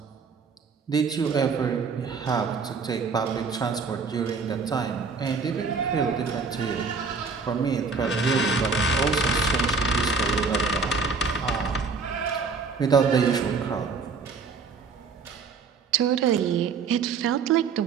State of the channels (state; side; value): quieter; left; 5.0 dB